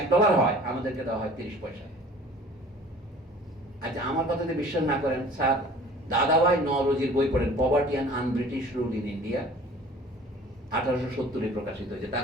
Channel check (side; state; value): both; normal; correlation 0.47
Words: হয়, আমাদেরকে দেওয়া হয় 30 পয়সা। আচ্ছা, আমার কথাতে বিশ্বাস না করেন, স্যার দাদাভাই নওরোজির বই পড়েন, poverty and un-British rule in India, 1870 প্রকাশিত হয়েছে,